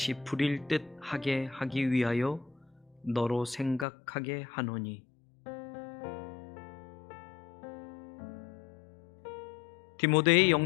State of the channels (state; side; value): drops out; right; at 3.9 s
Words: 부릴 듯 하게 하기 위하여 너로 생각하게 하노니. 디모데의